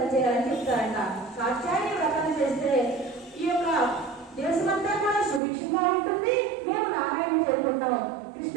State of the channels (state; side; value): drops out; left; at 5.4 s